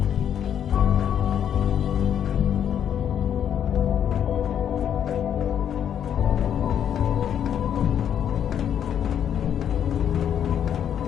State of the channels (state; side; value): quieter; right; 9.2 dB